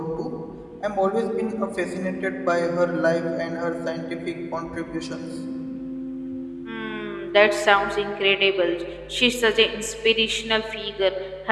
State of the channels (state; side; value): identical; both; correlation 1.00